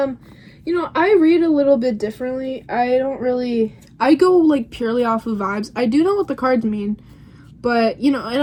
know, I read a little bit differently. I go like purely off of vibes. I do know what the cards mean, but you know, and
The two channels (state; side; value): identical; both; correlation 1.00